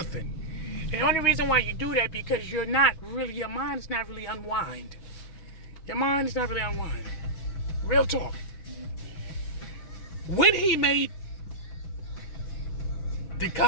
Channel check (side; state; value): right; late; 6.1 ms